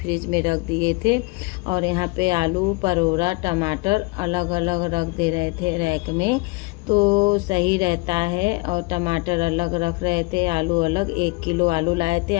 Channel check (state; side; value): quieter; right; 25.2 dB